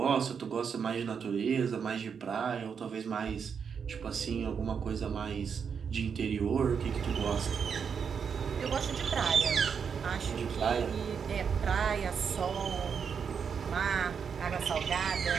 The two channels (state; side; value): quieter; left; 6.6 dB